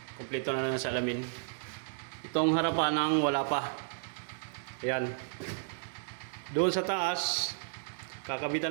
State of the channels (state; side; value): silent; left; digital silence